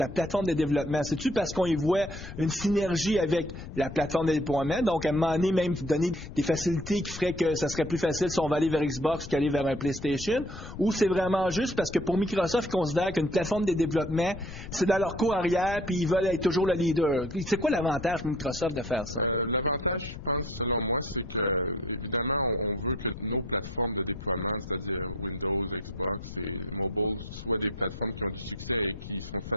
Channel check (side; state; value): left; noise; rumble, 11 dB below the sound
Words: plateforme de développement? C'est-tu parce qu'on y voit une synergie avec la plateforme de déploiement? Donc, à un moment donné, même donner des facilités qui feraient que ça serait plus facile si on va aller vers Xbox qu'aller vers un PlayStation? Ou c'est vraiment juste parce que pour Microsoft, ils considèrent qu'une plateforme de développement, c'est dans leur cours puis ils veulent être toujours le leader. C'est quoi l'avantage pour Microsoft de faire ça? L'avantage, je pense, selon moi, c'est que, évidemment, on veut que nos plateformes de déploiement, c'est-à-dire Windows, Xbox et mobile, soient des plateformes qui ont du succès et qui sont